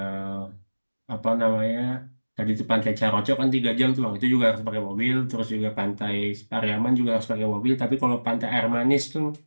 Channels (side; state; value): both; inverted; correlation -1.00